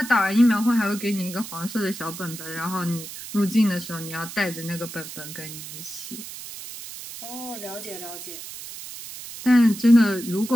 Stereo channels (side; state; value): right; noise; hiss, 11 dB below the sound